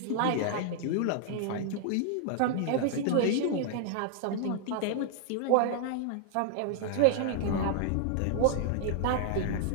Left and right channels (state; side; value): different; both; correlation -0.01